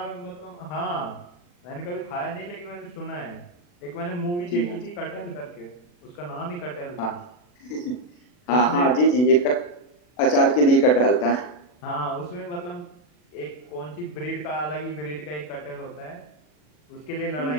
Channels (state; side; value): late; right; 40 ms